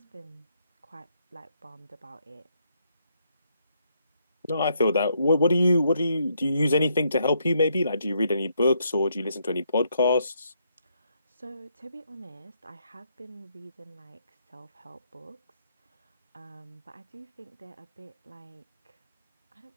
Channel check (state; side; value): inverted; both; correlation -0.75